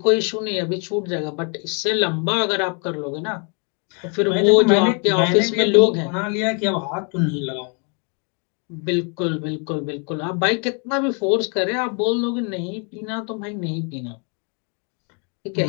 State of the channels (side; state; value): right; quieter; 37.1 dB